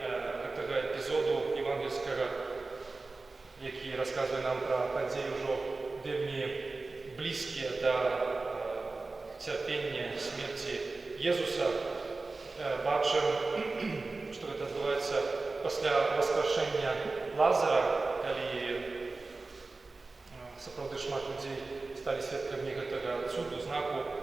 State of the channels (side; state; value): left; quieter; 3.6 dB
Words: цього епізоду євангельського, який розказує нам про події вже вельми близькі до терпіння смерті Єзуса, бачимо, що це відбувається після воскрешення Лазара, коли справді шмат людей стали свідками цього чуду, знаку.